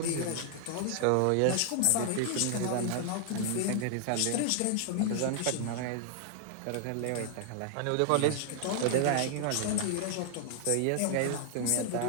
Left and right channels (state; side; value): different; both; correlation 0.00